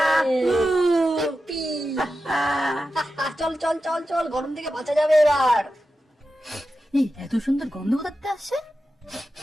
ইপ্পি! চল চল চল চল, গরম থেকে বাঁচা যাবে এবার। এই এত সুন্দর গন্ধ কোথাতে আসছে?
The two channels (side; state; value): both; normal; correlation 0.91